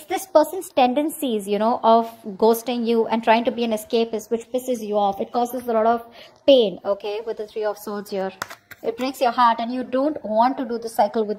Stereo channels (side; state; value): both; identical; correlation 1.00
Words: this person's tendencies, you know, of ghosting you and trying to be an escapist, which pisses you off. It causes a lot of pain, okay, with the Three of Swords here. It breaks your heart and you don't want to do the cycle with